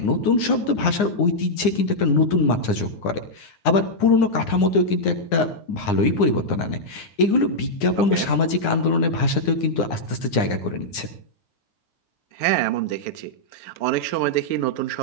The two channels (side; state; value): right; late; 9.7 ms